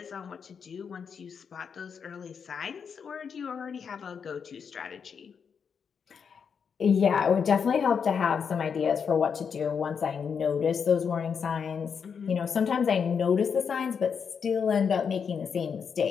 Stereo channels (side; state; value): right; quieter; 6.6 dB